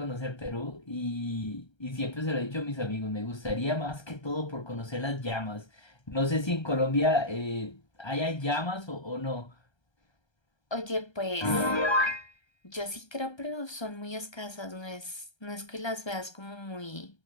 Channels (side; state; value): right; late; 1.3 ms